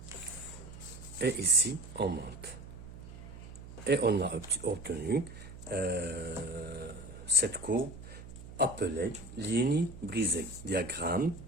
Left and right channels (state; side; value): noise; right; hum, 14 dB below the sound